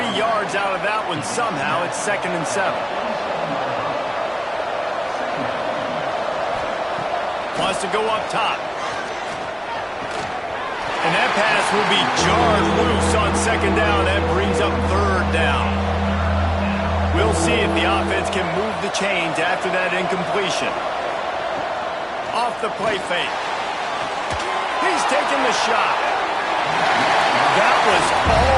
yards out of that one somehow. It's 2nd and 7. Wants to go up top. And that pass will be jarred loose on 2nd down. That brings up 3rd down. We'll see if the offense can move the chains after that incompletion. Off the play fake. He's taking the shot. That was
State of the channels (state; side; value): identical; both; correlation 1.00